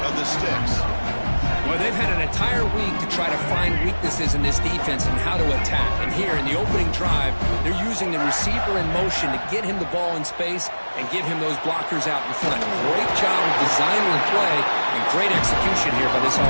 of the sticks. Well, they've had an entire week to try to find weaknesses in this defense and how to attack. And here in the opening drive, they're using the receiver in motion to get him the ball in space and give him those blockers out in front. Great job of designing the play and great execution here by this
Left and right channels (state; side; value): inverted; both; correlation -1.00